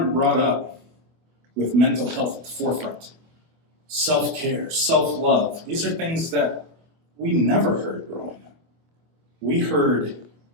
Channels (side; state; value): left; late; 25 ms